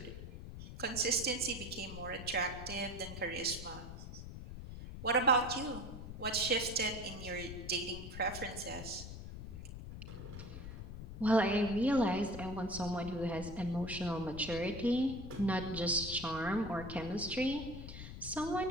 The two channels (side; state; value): left; noise; rumble, 10 dB below the sound